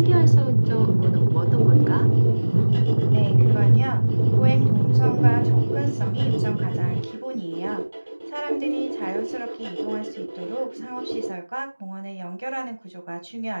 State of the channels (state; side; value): inverted; both; correlation -1.00